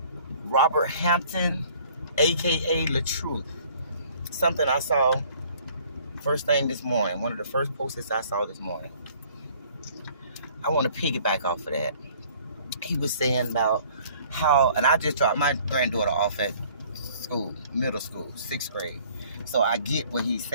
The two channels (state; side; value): inverted; both; correlation -0.55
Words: Robert Hampton, aka La Truth. Something I saw first thing this morning. One of the first posts I saw this morning. I want to piggyback off of that. He was saying about how, and I just dropped my granddaughter off at school, middle school, 6th grade. So I get what he's